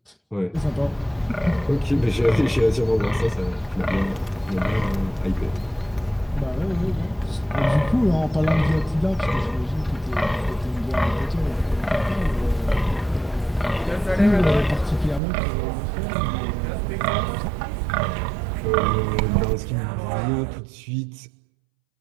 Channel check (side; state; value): left; drops out; at 15.2 s